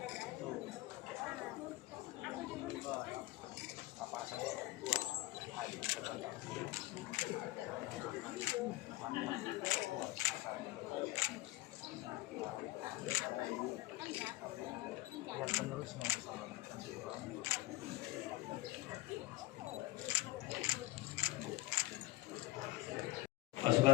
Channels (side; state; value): right; quieter; 18.8 dB